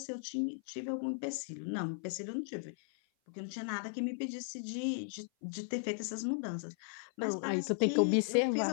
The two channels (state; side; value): silent; right; 53 dB below the other